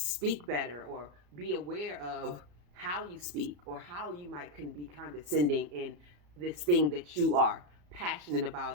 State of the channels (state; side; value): late; left; 34 ms